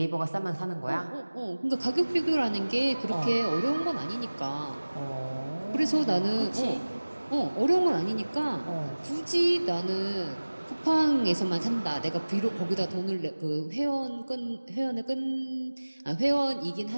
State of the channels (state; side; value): inverted; both; correlation -1.00